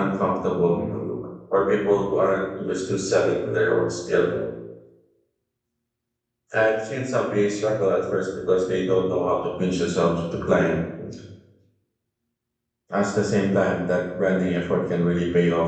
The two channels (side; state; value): both; identical; correlation 1.00